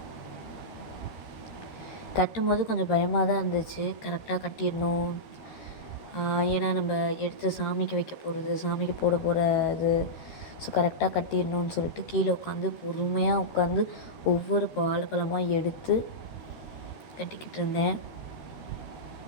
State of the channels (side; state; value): right; late; 13 ms